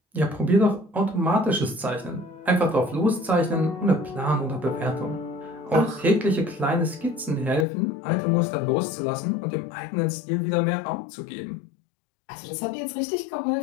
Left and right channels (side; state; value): right; drops out; at 7.7 s